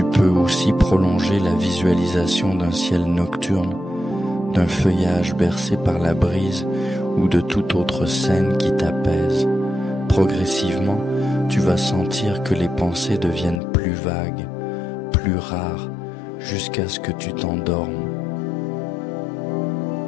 peux aussi prolonger la visualisation d'un ciel nocturne, d'un feuillage bercé par la brise ou de toute autre scène qui t'apaise. Progressivement, tu vas sentir que les pensées deviennent plus vagues, plus rares, jusqu'à ce que tu t'endormes.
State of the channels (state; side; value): drops out; right; at 13.6 s